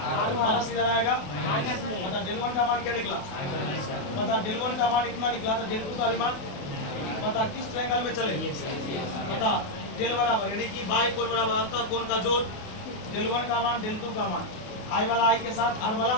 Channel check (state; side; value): late; right; 28 ms